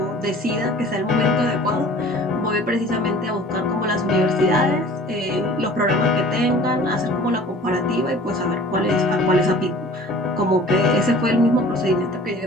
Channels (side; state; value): both; normal; correlation 0.46